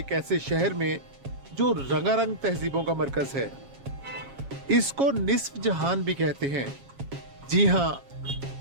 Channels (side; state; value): left; late; 7.3 ms